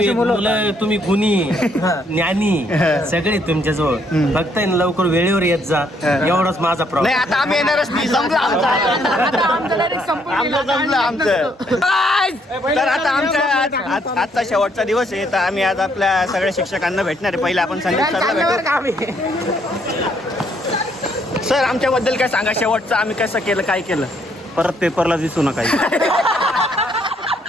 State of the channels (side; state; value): both; normal; correlation 0.70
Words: मुलं तुम्ही गुणी ज्ञानी सगळे तुमच्याजवळ फक्त लवकर वेळेवर येत जा एवढाच माझा नाही. प्रॉब्लेम. आता आम्ही येणारच नाही. संपलं आमचं. तर आता आमच्या आजचा शेवटचा दिवस आहे. तर आम्ही आज आपल्या सगळ्या शिक्षकांना भेटणार आहे. पहिले आपण संदीप सरला भेटू. सर आमच्याबद्दल काय सांगा शेवटचं आम्ही कसं केलं काय केलं परत पेपरला दिसू नका.